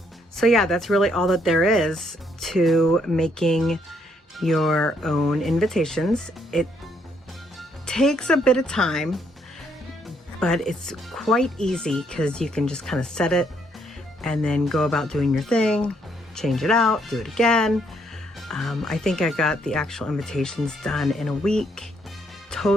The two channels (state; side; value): normal; both; correlation 0.71